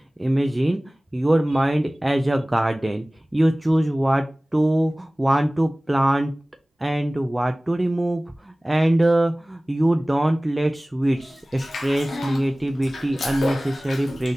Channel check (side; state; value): both; normal; correlation 0.98